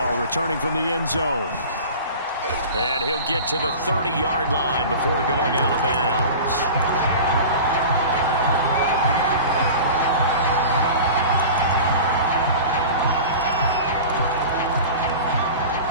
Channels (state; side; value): inverted; both; correlation -0.36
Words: returning from the end zone. And he'll get to the 30-yard line before going out of bounds.